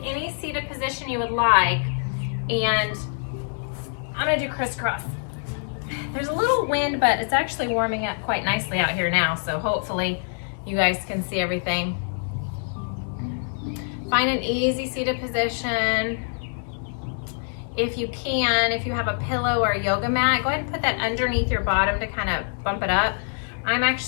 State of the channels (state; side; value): silent; right; 59 dB below the other